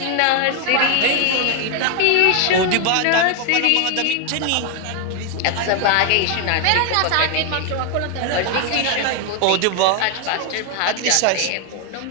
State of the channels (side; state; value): both; different; correlation 0.00